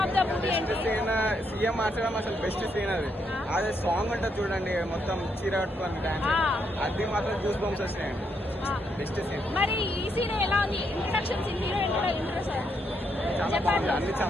of the movie ఏంటి? సీఎం మార్చడం అసలు బెస్ట్ సీన్ అది. అదే సాంగ్ ఉంటుంది చూడండి, మొత్తం చీర కట్టుకొని డాన్స్, అది మాత్రం జ్యూస్ బంప్స్ వచ్చినాయండి. Best scene. మరి ఈ సీన్ ఎలా ఉంది? ఇంట్రడక్షన్ సీన్, హీరో ఇంట్రడక్షన్ చాలా బాగుంది, అన్ని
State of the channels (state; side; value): normal; both; correlation 0.77